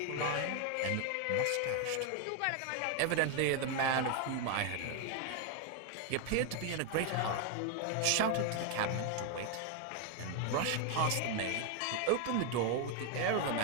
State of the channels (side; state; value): both; different; correlation 0.01